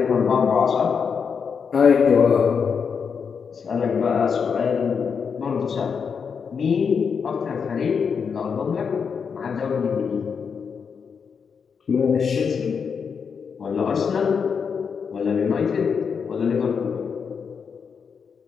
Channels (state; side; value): quieter; right; 6.3 dB